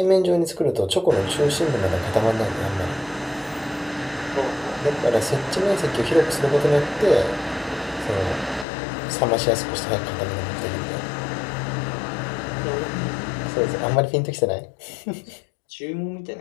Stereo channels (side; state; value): right; drops out; at 8.7 s